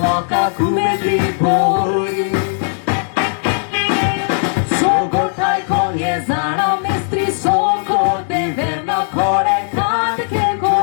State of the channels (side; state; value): right; silent; 68 dB below the other